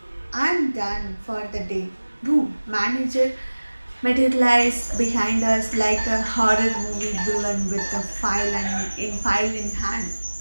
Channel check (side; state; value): both; inverted; correlation -1.00